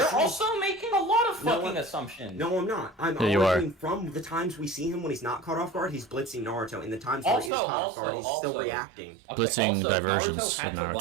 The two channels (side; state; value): left; drops out; at 7.5 s